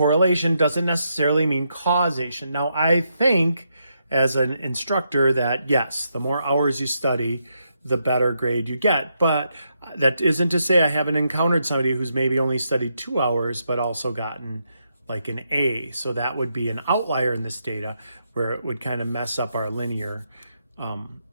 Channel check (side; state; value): both; inverted; correlation -0.80